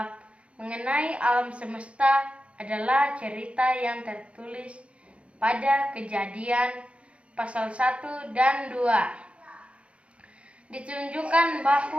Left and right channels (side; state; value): left; late; 0.061 ms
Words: mengenai alam semesta adalah cerita yang tertulis pada Kejadian pasal 1 dan 2. Ditunjukkan